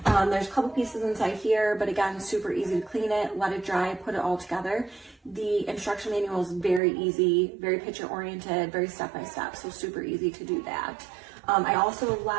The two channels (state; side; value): drops out; left; at 6.8 s